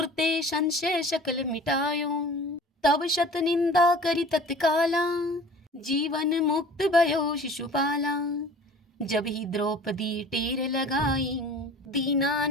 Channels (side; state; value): both; normal; correlation 0.44